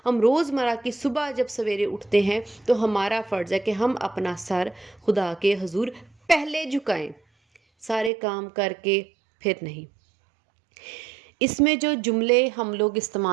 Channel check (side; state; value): left; drops out; at 8.1 s